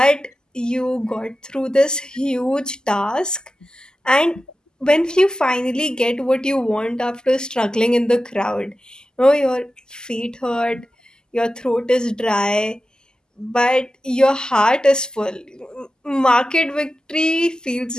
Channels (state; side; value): normal; both; correlation 0.93